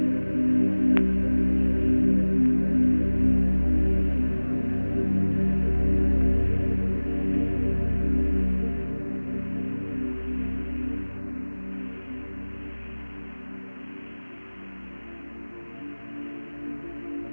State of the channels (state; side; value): inverted; both; correlation -1.00